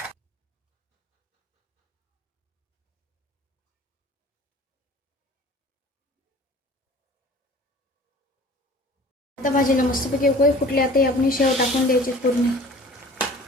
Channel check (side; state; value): both; normal; correlation 0.45